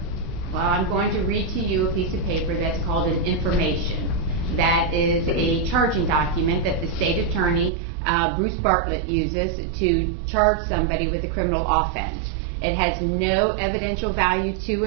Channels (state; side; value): drops out; left; at 7.7 s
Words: Well, I'm going to read to you a piece of paper that's called an information. That is a charging document that the state attorney, Bruce Bartlett, uses to charge somebody with a criminal offense. It has no evidential value to